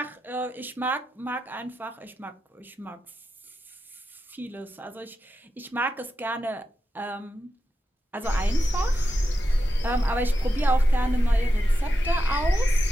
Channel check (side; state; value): both; normal; correlation 0.89